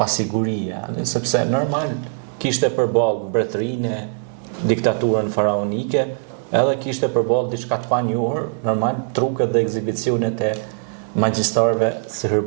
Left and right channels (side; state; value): left; silent; 61 dB below the other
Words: sepse normal kishte përballë mbretërinë, diktaturën faraonike, edhe kishte përballë diçka të panjohur, normal truket dhe ekzibicionet e magjistarëve